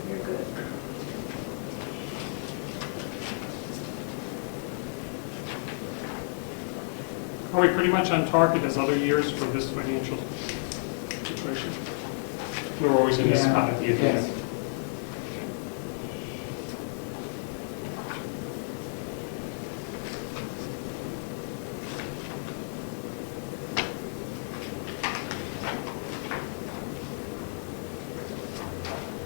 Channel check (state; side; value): silent; right; digital silence